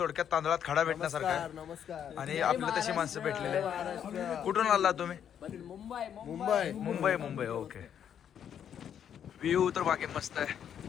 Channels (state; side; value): quieter; right; 8.9 dB